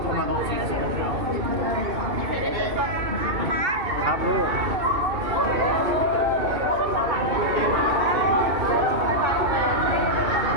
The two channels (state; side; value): late; left; 2.7 ms